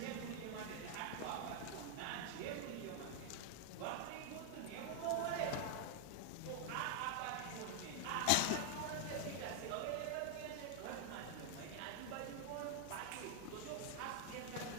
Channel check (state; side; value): different; both; correlation 0.00